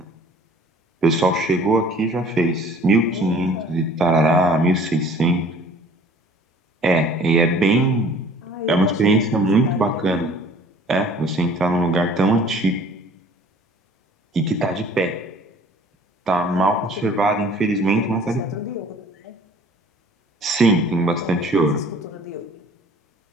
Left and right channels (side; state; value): both; normal; correlation 0.51